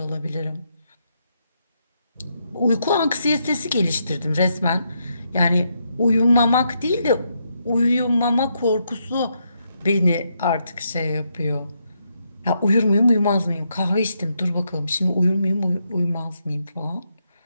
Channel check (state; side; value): inverted; both; correlation -0.79